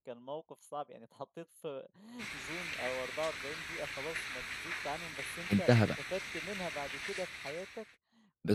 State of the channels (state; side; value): identical; both; correlation 1.00